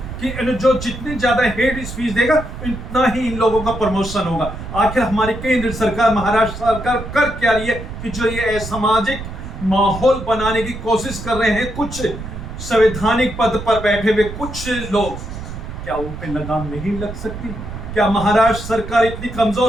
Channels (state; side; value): noise; right; rumble, 9 dB below the sound